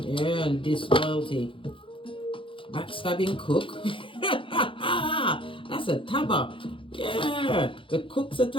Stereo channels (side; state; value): right; late; 0.25 ms